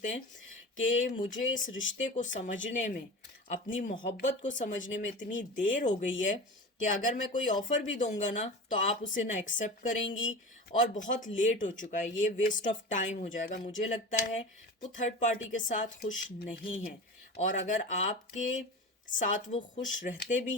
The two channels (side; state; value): both; normal; correlation 0.31